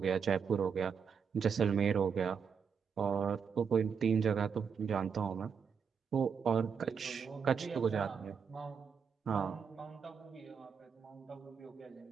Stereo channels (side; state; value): left; quieter; 6.4 dB